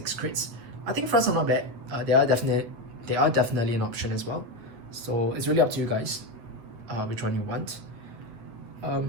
crits. I think fronts are not bad. They are definitely an option as well. So it's really up to you guys which one you want.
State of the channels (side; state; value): left; late; 8.9 ms